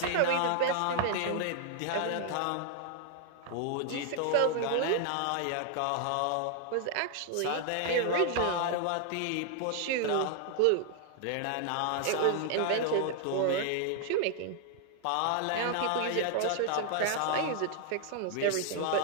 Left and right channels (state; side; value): different; both; correlation 0.00